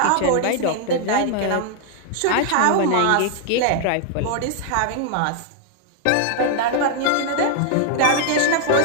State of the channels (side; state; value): both; different; correlation 0.00